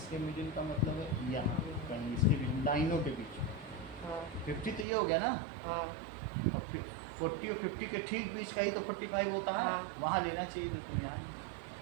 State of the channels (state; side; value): drops out; left; at 4.9 s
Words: मिडिल का मतलब है यहाँ कहीं इसके बीच लाइनों के बीच हाँ 50 तो ये हो गया ना हाँ और फिर 40 और 50 के ठीक बीच का ही तो 45 होता है हाँ। वहाँ लेना चाहिए था तुम यहाँ